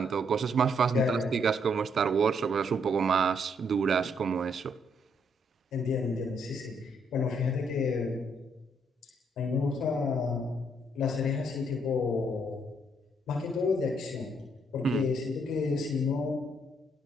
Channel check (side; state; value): both; normal; correlation 0.72